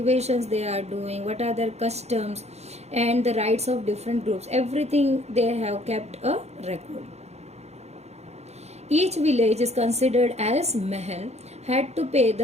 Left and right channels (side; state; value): left; late; 0.31 ms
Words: they are doing, what are their customs and the rights of different groups. Everything they have kept a record. Each village is considered as mahal, had to pay